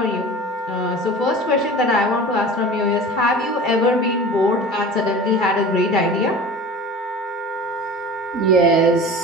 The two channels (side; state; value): both; normal; correlation 0.38